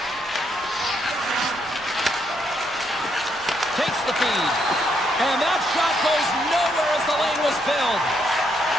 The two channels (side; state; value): left; noise; rumble, 24 dB below the sound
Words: Takes the feed. And that shot goes nowhere as the lane was filled.